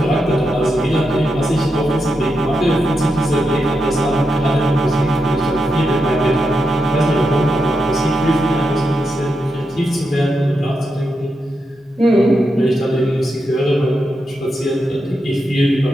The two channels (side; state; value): both; normal; correlation 0.86